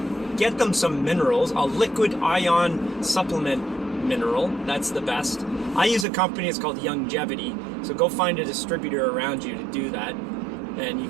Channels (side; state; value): left; drops out; at 6.1 s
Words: get them some minerals, a liquid ion supplement mineral. That's the best. I use a company, it's called Youngevity. So go find a distributor around you to do that, and you